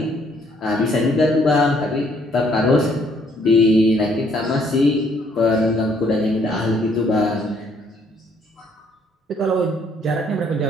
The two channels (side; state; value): both; normal; correlation 0.66